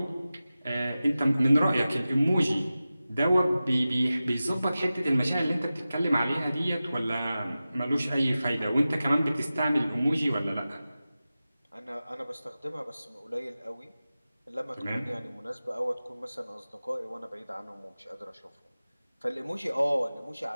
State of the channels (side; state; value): both; inverted; correlation -0.95